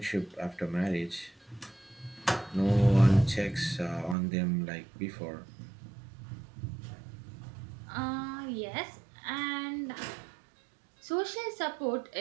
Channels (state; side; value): drops out; left; at 4.2 s